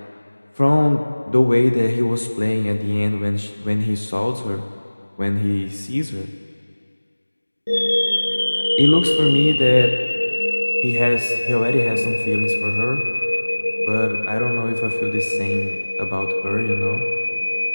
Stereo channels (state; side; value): inverted; both; correlation -1.00